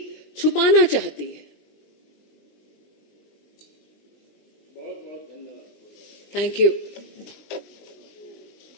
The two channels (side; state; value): right; late; 20 ms